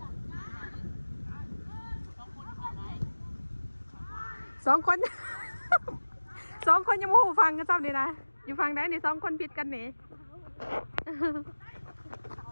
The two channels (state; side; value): inverted; both; correlation -1.00